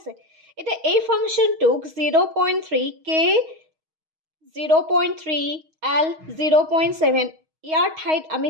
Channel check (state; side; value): late; left; 6.3 ms